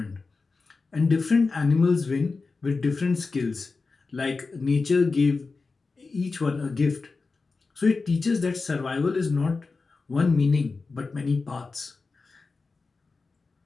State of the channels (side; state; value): right; quieter; 4.1 dB